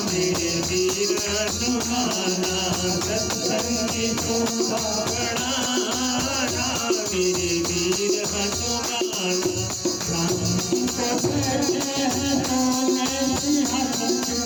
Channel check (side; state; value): both; identical; correlation 1.00